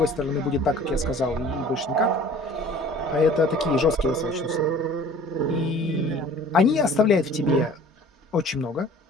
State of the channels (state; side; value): normal; both; correlation 0.48